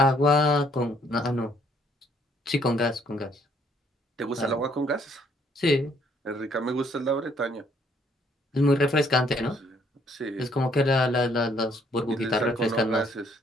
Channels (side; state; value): both; normal; correlation 0.66